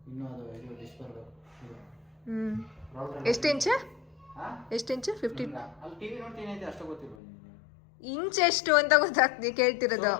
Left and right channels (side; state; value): right; drops out; at 7.2 s